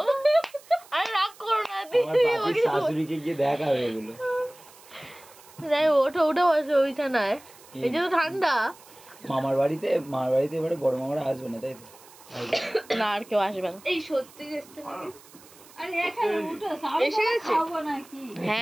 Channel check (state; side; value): noise; right; hiss, 23 dB below the sound